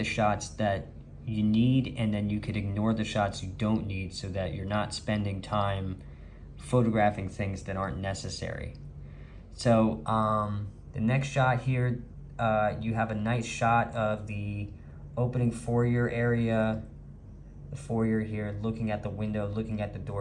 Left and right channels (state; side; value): identical; both; correlation 1.00